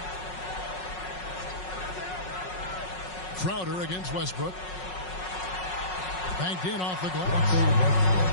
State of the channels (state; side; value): late; right; 5.5 ms